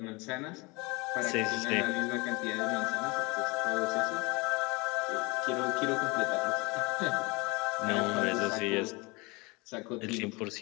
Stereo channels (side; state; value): right; quieter; 26.4 dB